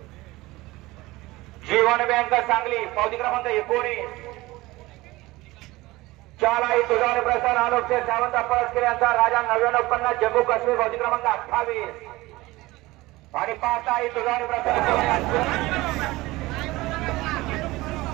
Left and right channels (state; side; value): quieter; left; 19.8 dB